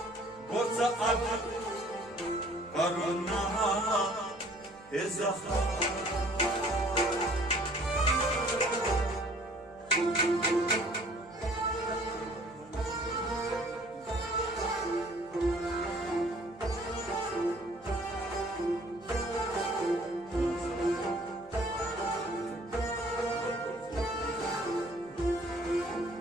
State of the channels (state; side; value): noise; left; hum, 25 dB below the sound